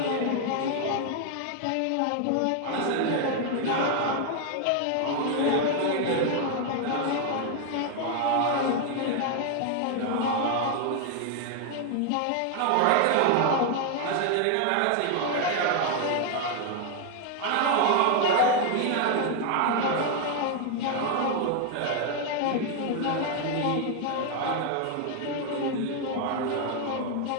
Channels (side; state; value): both; different; correlation 0.00